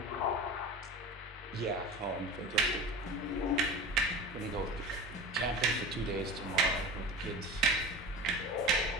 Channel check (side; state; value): both; normal; correlation 0.33